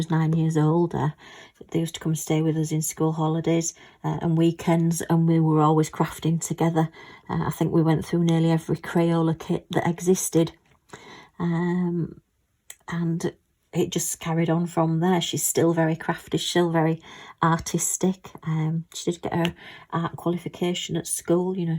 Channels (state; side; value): identical; both; correlation 1.00